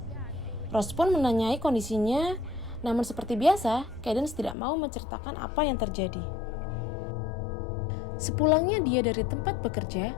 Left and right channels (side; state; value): right; drops out; at 4.5 s